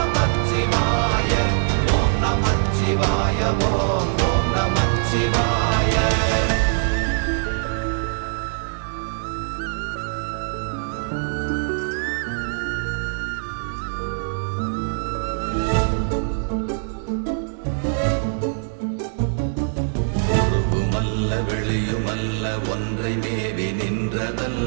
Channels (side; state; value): left; silent; digital silence